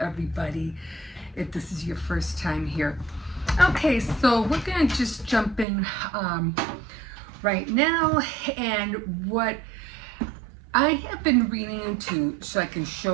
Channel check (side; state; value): left; drops out; at 5.7 s